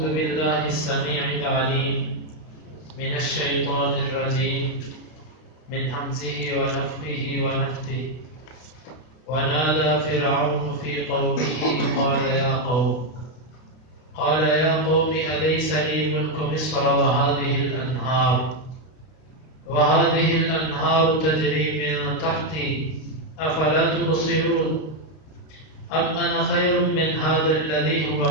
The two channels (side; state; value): right; late; 32 ms